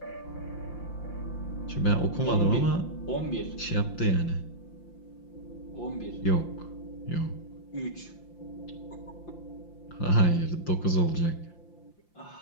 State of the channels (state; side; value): late; right; 5.8 ms